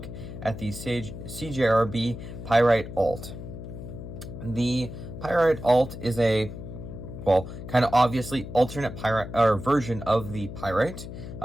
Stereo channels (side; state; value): left; noise; hum, 10 dB below the sound